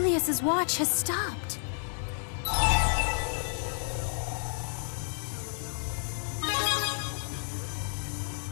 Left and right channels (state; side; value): silent; right; 57 dB below the other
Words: watch has stopped.